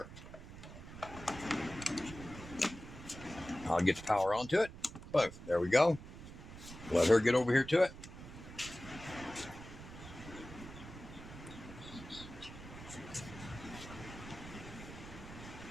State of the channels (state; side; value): noise; right; rumble, 13 dB below the sound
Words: I'll get the power onto it. Boom. There we go. Let her get over here to it.